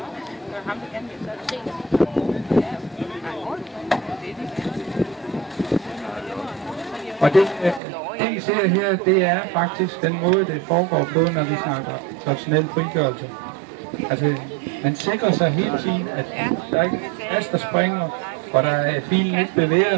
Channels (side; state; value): left; drops out; at 7.8 s